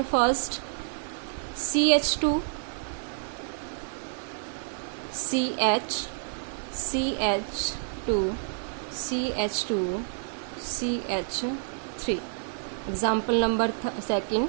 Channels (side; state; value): left; silent; digital silence